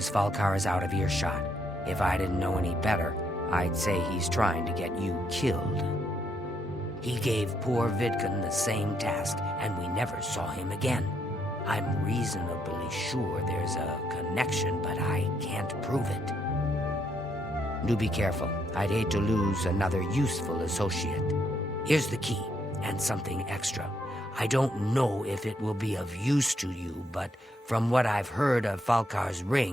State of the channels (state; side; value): normal; both; correlation 0.75